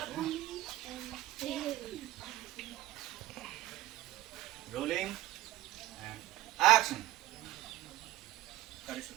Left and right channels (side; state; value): left; quieter; 15.9 dB